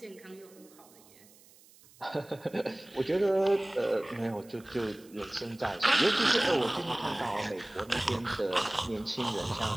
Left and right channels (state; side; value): noise; right; hiss, 25 dB below the sound